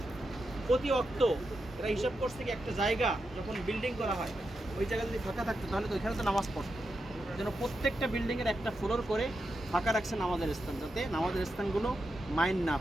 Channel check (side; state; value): both; normal; correlation 0.87